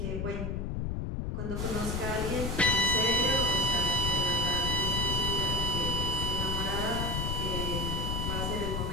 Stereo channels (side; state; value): left; noise; rumble, 1 dB below the sound